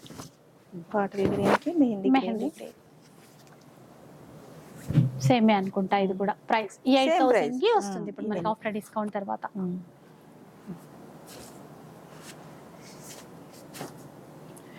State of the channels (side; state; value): both; identical; correlation 1.00